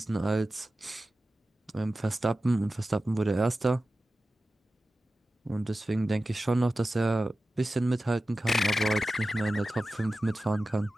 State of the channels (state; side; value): normal; both; correlation 0.95